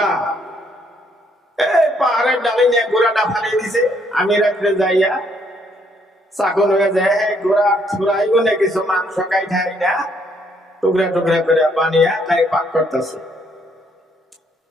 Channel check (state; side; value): normal; both; correlation 0.69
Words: এই পাহাড়ের ডালে নিয়ে ঘোড়াটা ফালিয়ে দিছে। আমি রাত্রে যাইয়া চাকন হয়ে যায়, ঘোড়া ছুড়াইব না কিছু মাংস কাইঠাই না, টুকরা টুকরা করে বানিয়ে তাই পাক করতেছে।